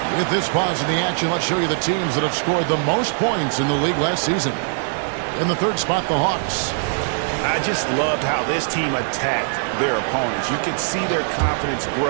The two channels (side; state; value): left; silent; digital silence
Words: With this pause in the action, let's show you the teams that have scored the most points in the league last season. In the 3rd spot, the Hawks. I just loved how this team attacked their opponents. You could see their confidence